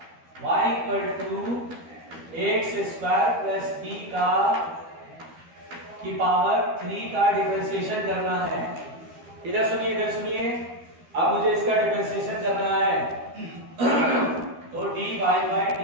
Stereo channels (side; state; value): left; late; 12 ms